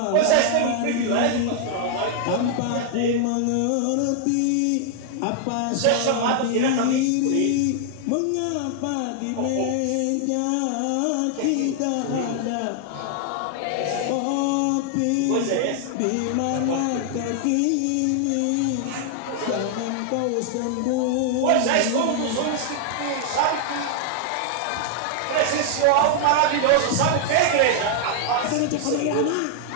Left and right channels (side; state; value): both; different; correlation 0.00